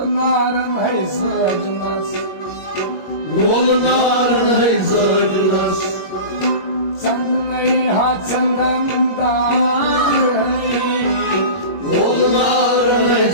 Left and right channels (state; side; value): late; right; 21 ms